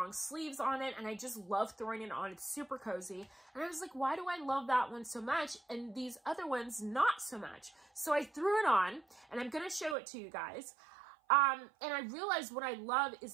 sleeves on it, and I just love throwing it on. It's super cozy. And I was like, why do I love that one so much and these other ones not so much? So I threw it on, and I'm going to show it to you guys. And I realized what I love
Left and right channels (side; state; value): left; drops out; at 10.0 s